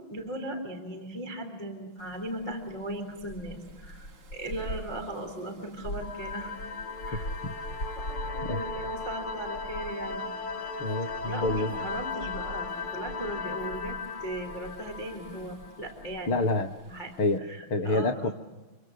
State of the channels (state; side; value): late; right; 6.1 ms